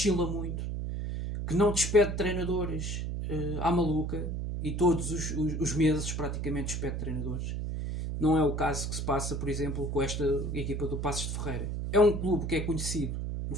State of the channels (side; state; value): right; noise; hum, 3 dB below the sound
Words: muito, que não despede treinadores à maluca, e todos os meses praticamente despede treinadores. Não é o caso que se passa, por exemplo, com esta equipa do Passos de Ferreira. É um clube que é conhecido no